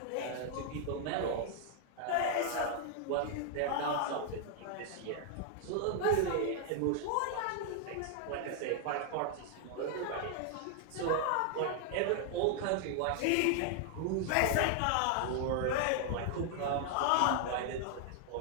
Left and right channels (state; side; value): different; both; correlation 0.00